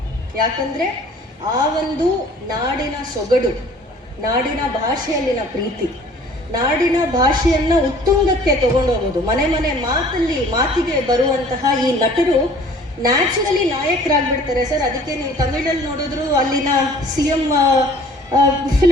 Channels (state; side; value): normal; both; correlation 0.51